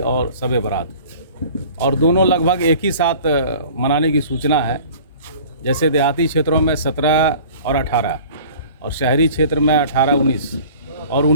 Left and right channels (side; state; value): both; inverted; correlation -0.46